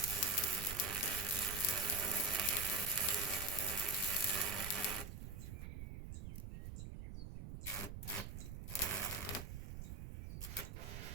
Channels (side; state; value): right; noise; rumble, 7 dB below the sound